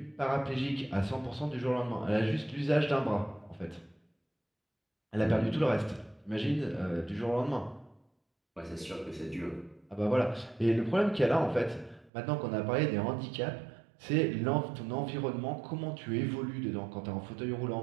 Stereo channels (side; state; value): left; drops out; at 12.1 s